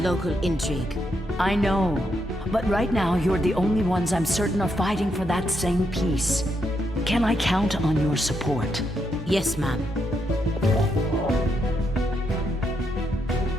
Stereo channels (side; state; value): both; normal; correlation 0.80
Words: intrigue. I know, but right now you're the only ones I'm certain are fighting for that same peace. Can I count on your support? Yes, ma'am.